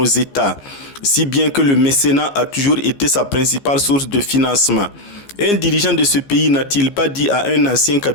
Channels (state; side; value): late; right; 15 ms